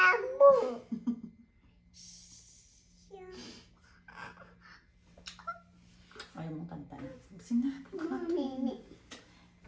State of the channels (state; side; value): identical; both; correlation 1.00